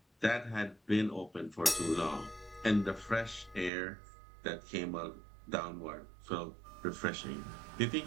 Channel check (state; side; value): drops out; left; at 3.7 s